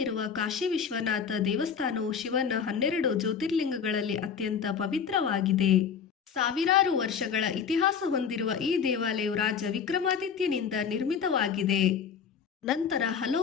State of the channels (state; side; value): quieter; right; 6.9 dB